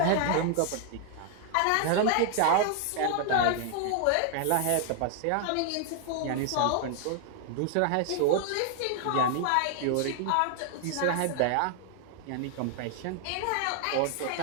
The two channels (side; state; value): both; different; correlation 0.00